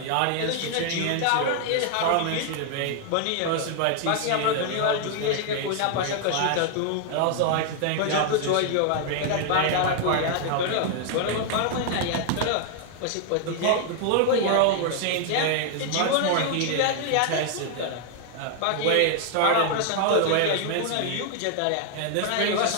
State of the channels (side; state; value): both; different; correlation 0.00